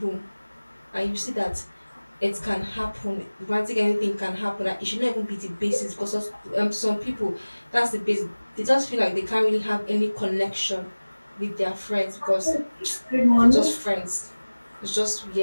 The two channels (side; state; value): both; inverted; correlation -1.00